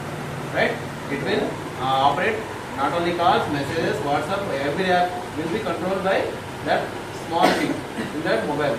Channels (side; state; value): both; identical; correlation 1.00